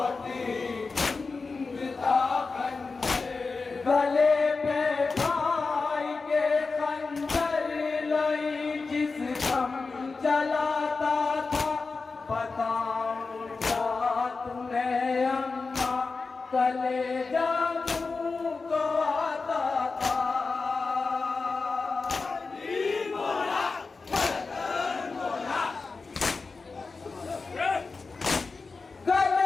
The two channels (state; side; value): quieter; right; 4.2 dB